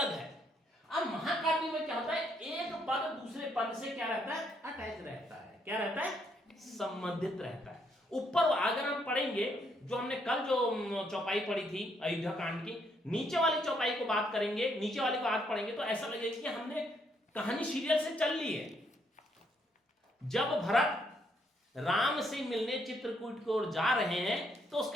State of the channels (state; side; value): normal; both; correlation 0.73